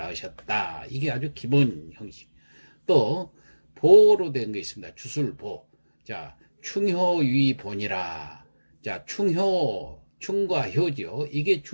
이게 아주 기본 형식. 또 보로 된 거 있습니다. 주술보. 자, 충효위본이라. 자, 충과 효죠. 이게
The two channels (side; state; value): both; inverted; correlation -1.00